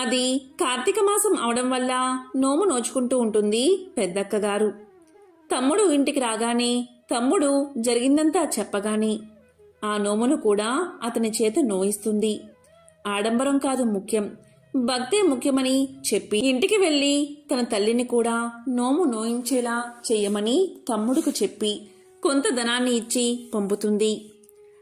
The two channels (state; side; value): identical; both; correlation 1.00